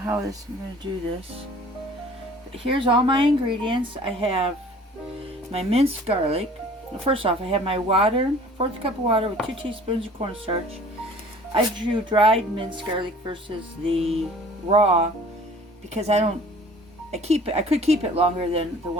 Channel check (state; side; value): normal; both; correlation 0.49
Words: I'm going to do this, but here's all my ingredients. I have my minced garlic. First off, I have my water, 1/4 cup of water with 2 teaspoons of cornstarch. I drew dried minced garlic versus the raw because I could keep it longer than the